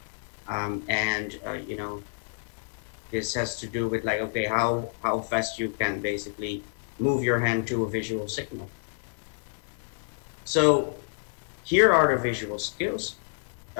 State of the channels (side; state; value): right; silent; digital silence